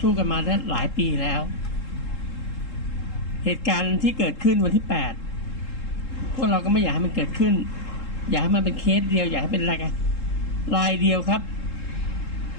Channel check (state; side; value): late; right; 3.7 ms